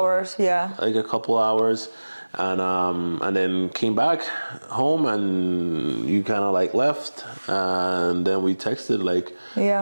yeah, like a couple hours, and then came back home, and you kind of like left, and then we texted like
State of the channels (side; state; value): both; inverted; correlation -1.00